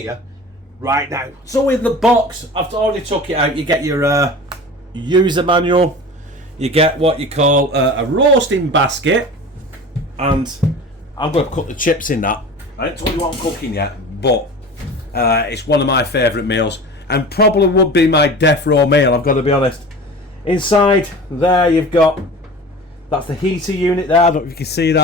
right now. So in the box, I've already took it out. You get your user manual, you get what you call a roasting basket, and I'm going to cook the chips in that. I haven't told you what I'm cooking yet, but it's one of my favourite meals, and probably would be my death row meal, I've got to be honest. Inside there you've got, that's the heater unit there, I don't know if you can see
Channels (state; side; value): normal; both; correlation 0.36